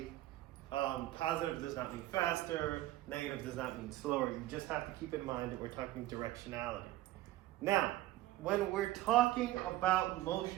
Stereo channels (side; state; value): left; quieter; 16.1 dB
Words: positive does not mean faster, negative does not mean slower. You just have to keep in mind that we're talking directionality. Now, when we're talking about